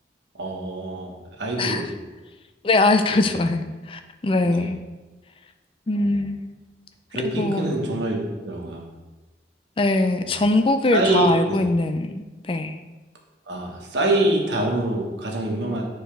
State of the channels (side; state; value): both; normal; correlation 0.49